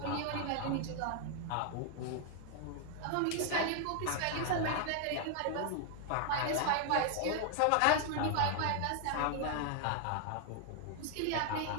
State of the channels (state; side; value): different; both; correlation 0.00